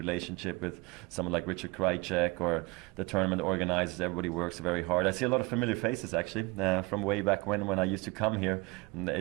with someone like Richard Krajicek or the tournament organizers. Everybody works very hard. I see a lot of familiar faces, actually, from way back when I used to come here. And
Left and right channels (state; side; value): quieter; left; 24.4 dB